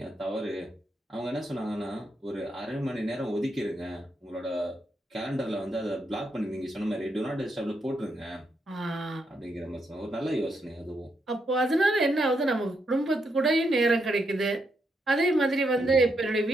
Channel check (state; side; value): normal; both; correlation 0.80